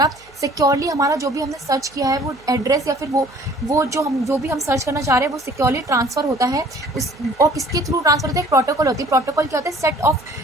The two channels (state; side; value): noise; right; hum, 27 dB below the sound